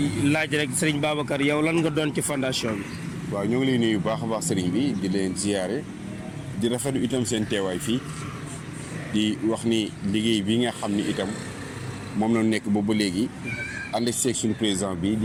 laaj rek Serigne Babacar yow lan nga doon ci fondation bi. waaw ñoo ngi lay nuyu bu baax a baax Serigne bi di leen ziyaare di rafetlu itam seen teewaay fii di wax ni liggéey bi nga xam ni itam moom la nekk boobu ba léegi. ànd seeg suñu président bi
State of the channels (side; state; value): both; identical; correlation 1.00